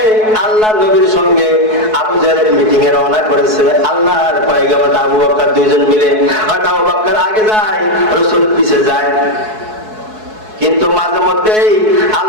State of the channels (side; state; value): left; late; 4.7 ms